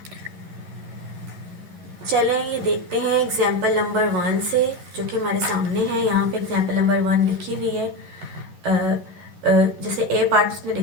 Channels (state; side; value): late; left; 11 ms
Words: चलें ये देखते हैं एग्जाम्पल नंबर 1 से, जो कि हमारे सामने है। यहाँ पे एग्जाम्पल नंबर 1 लिखी हुई है। जैसे ए पार्ट उसने